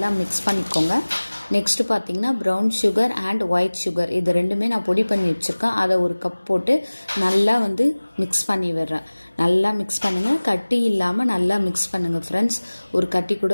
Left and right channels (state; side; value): inverted; both; correlation -1.00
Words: மிக்ஸ் பண்ணிக்கோங்க. நெக்ஸ்ட்டு பார்த்தீங்கன்னா brown sugar and white sugar இது ரெண்டுமே நான் பொடி பண்ணி வச்சுருக்கேன். அதை ஒரு கப் போட்டு நல்லா வந்து மிக்ஸ் பண்ணி விடுறேன். நல்லா மிக்ஸ் பண்ணுங்கள், கட்டி இல்லாமல் நல்லா மிக்ஸ் பண்ணுங்கள் ஃப்ரெண்ட்ஸ். ஒரு கட்டி கூட